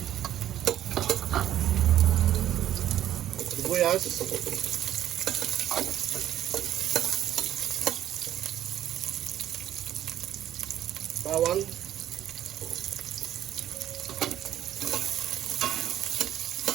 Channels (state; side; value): quieter; left; 11.8 dB